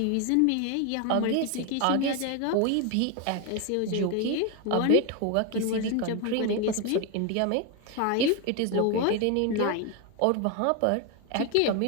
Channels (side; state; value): both; different; correlation 0.01